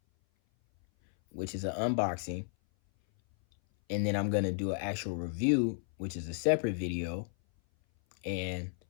which is an unboxing, and then I'm going to do an actual review, which is a separate video, and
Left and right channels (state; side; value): silent; right; 56 dB below the other